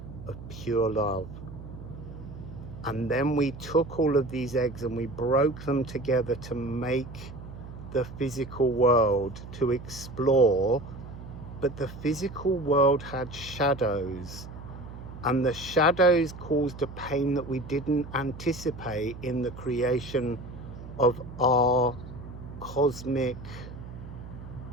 of pure love. And then we took all of these eggs and we broke them together to make the physical world, to explore. But the physical world had shadows, and the shadows caused a pain that we didn't anticipate in the creation of our cosmic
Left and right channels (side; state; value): right; noise; hum, 13 dB below the sound